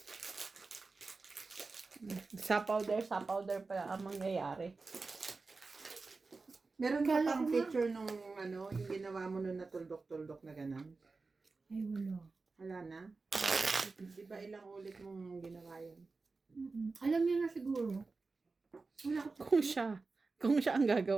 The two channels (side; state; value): left; quieter; 4.0 dB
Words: Sapaw there pala ang mangyayari. Meron ka Kala pang ko nga. picture nung yung ginawa mo nun na tuldok-tuldok na gano'n? Ay, wala. Wala na? Di ba ilang ulit mong ginawa yun? Alam niya na siguro. Wala ko. Kung siya ang